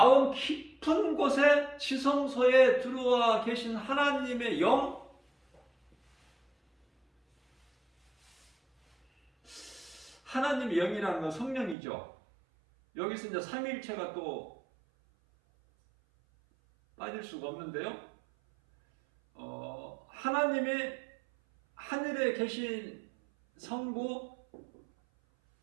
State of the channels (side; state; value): left; drops out; at 11.8 s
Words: 깊은 곳에 지성소에 들어와 계신 하나님의 영, 하나님의 영이라는 건 성령이죠. 여기서 이제 삼위일체가 또 빠질 수가 없는데요. 하나님의 하늘에 계신 성부,